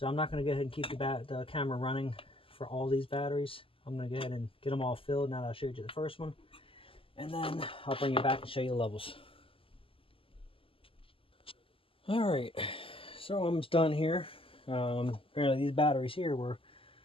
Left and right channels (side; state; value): right; late; 0.26 ms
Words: I'm not going to go ahead and keep the camera running for all these batteries. I'm going to go ahead and get them all filled now that I showed you the first one. And then I'll bring you back and show you the levels. Alright, so I'm almost done here. Apparently these batteries here were